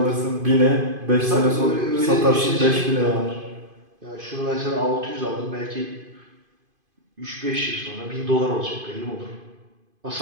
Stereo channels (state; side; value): late; left; 2.5 ms